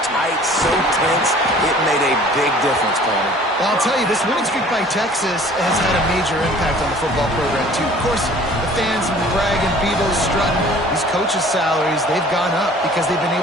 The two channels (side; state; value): both; normal; correlation 0.50